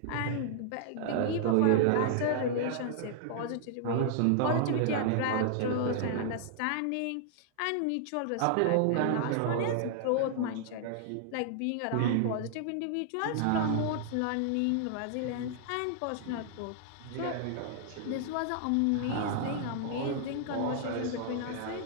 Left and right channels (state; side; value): different; both; correlation -0.01